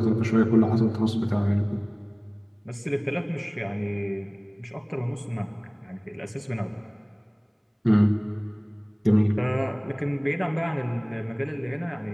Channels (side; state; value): both; identical; correlation 1.00